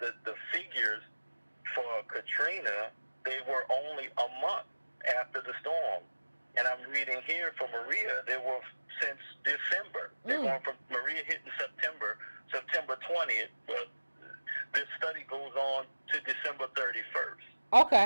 figures for Katrina, they were only a month after the storm. And I'm reading here for Maria, they were since December. They're going from Maria hitting September 20th, but this study goes on to December 31st.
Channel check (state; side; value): inverted; both; correlation -1.00